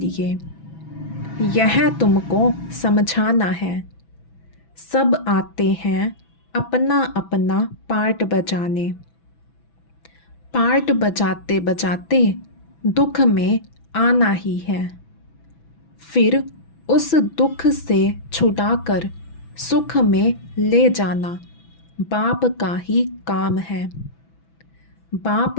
यह तुमको समझाना है। सब आते हैं अपना अपना पार्ट बजाने। पार्ट बजाते बजाते दुख में आना ही है। फिर उस दुख से छुड़ाकर सुख में ले जाना बाप का ही काम है। बाप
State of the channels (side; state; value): right; late; 6.0 ms